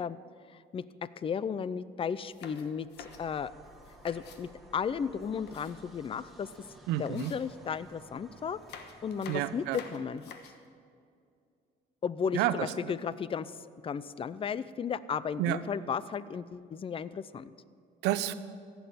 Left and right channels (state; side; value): normal; both; correlation 0.33